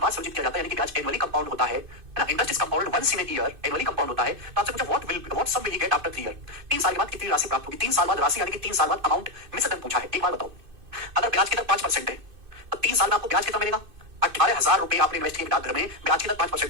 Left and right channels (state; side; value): late; left; 2.5 ms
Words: बार संचित किया जाता है, यानी कि ब्याज एनुअली कंपाउंड होता है ना, interest is compound once in a year, annually compound होता है। तो आपसे पूछा what sum will he get after 3 year? 3 साल के बाद कितनी राशि प्राप्त होगी? 3 साल बाद राशि यानी कि 3 साल बाद अमाउंट मिस दर पूछा है। एक बार बताओ, अगर ब्याज की दर 5% है तो 3 साल में आपको ब्याज कितना मिलेगा? 18,000 रुपए आपने इन्वेस्ट किए डाकघर में, ब्याज की दर